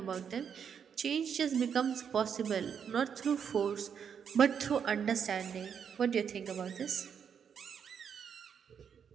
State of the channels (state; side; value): quieter; left; 7.4 dB